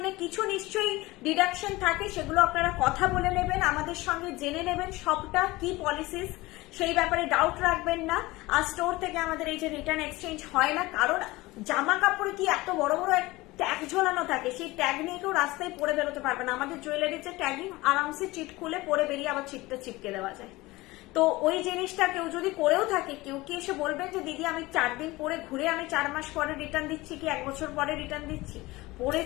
কিছু নিশ্চয়ই ডিডাকশন থাকে, সেগুলো আপনারা কথা বলে নেবেন, আমাদের সঙ্গে জেনে নেবেন সবটা কি পলিসিস, সেই ব্যাপারে ডাউট রাখবেন না। আর স্টোর থেকে আমাদের এই যে রিটার্ন এক্সচেঞ্জ হয় না, কারণ জামা কাপড়ে কি এত বড় বড় ট্যাগ ঝোলানো থাকে, সেই ট্যাগ নিয়ে কেউ রাস্তায় পরে বেরোতে পারবে না। আমাদের জুয়েলারির যে ট্যাগিং, আরামসে চিট খুলে পরে বেরিয়ে আবার চিটটা চিপকে দেওয়া যায়। তো ওই জিনিসটা কেউ যদি করেও থাকে, কেউ কি এসে বলবেন যে দিদি আমি 4 দিন পরে ঘুরে আমি 4 মাস পরে রিটার্ন দিচ্ছি কি 1 বছর পরে রিটার্ন দিচ্ছি,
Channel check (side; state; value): right; quieter; 20.5 dB